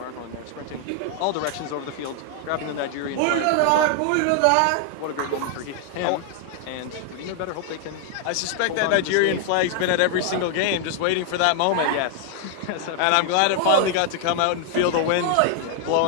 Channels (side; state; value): both; different; correlation 0.00